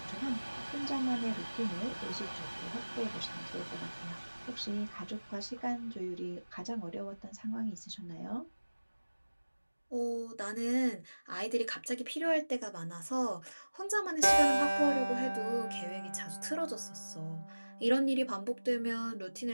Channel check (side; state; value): both; inverted; correlation -1.00